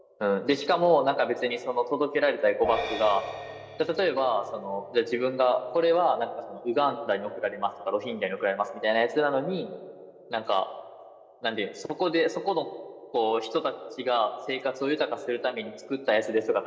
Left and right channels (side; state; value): both; identical; correlation 1.00